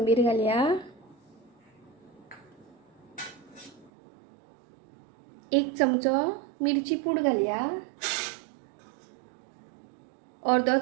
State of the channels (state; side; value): drops out; left; at 3.9 s